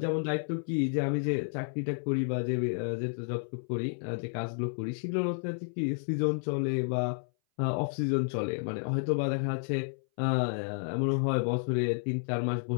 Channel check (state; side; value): silent; right; 57 dB below the other